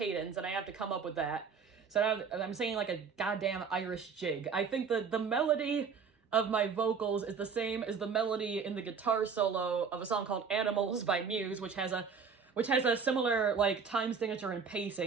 and I have to come up with that. So now I'm singing, like, a goddamn Irish jig. I think the melody of my vocals is the same as the melody in the guitar solo of a song called Animals by Muse, which has a similar, like, time signature and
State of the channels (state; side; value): quieter; left; 5.8 dB